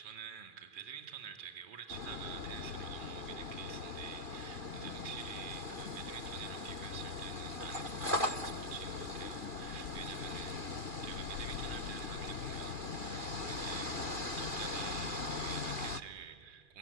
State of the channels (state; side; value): late; left; 2.4 ms